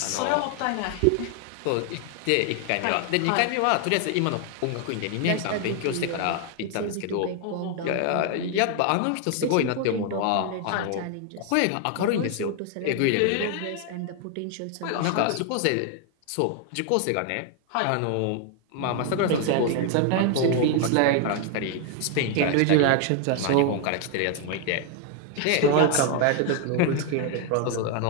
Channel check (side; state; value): both; different; correlation 0.00